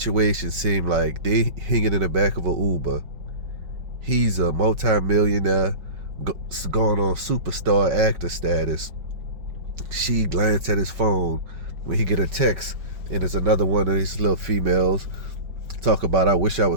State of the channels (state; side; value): late; left; 4.9 ms